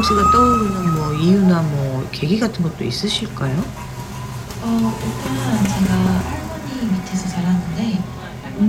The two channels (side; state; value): both; identical; correlation 1.00